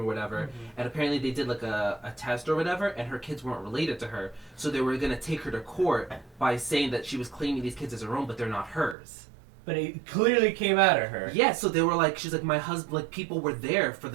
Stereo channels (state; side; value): drops out; left; at 9.0 s